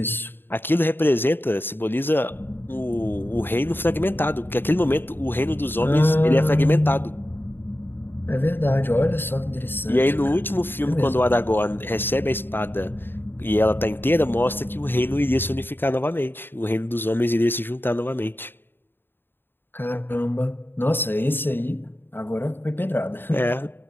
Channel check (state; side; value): late; right; 0.099 ms